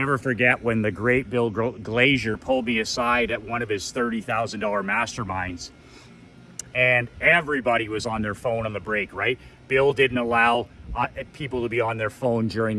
forget when the great Bill Glazier pulled me aside at one of his $30,000 masterminds, and everybody was on their phone on the break, right? Bill didn't allow people to be on their phone during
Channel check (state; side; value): identical; both; correlation 1.00